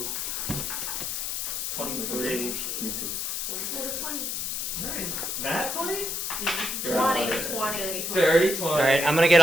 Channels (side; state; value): left; noise; hiss, 2 dB below the sound